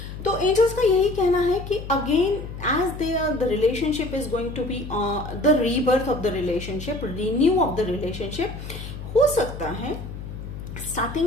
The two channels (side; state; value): left; noise; hum, 10 dB below the sound